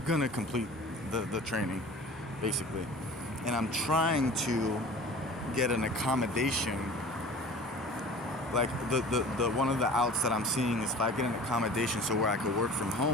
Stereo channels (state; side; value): normal; both; correlation 0.42